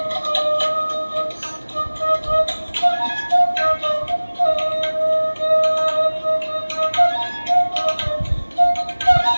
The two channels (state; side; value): inverted; both; correlation -1.00